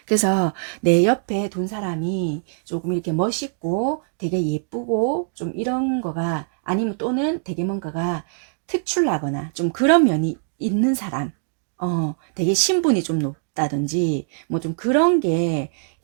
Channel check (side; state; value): left; silent; digital silence